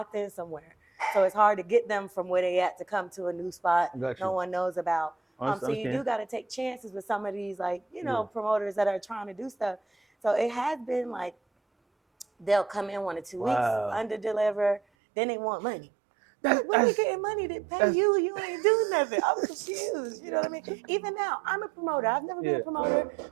in somewhere. So it's hard to get them from where they at to come to a new spot no one knows about. So you do got to take chances with some of these, like, promoters that are trying to do stuff. So it has been like, they'll come in 1 or 2 weeks, under deliver, then they want money. When we getting money to pay you, you ain't doing nothing. I'm confused. You know what I mean? Even now, I'm a promoter. I've never been a promoter,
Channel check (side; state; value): left; drops out; at 14.8 s